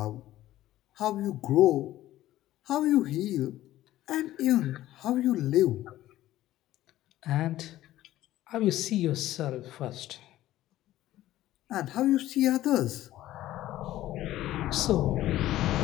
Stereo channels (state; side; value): quieter; right; 14.5 dB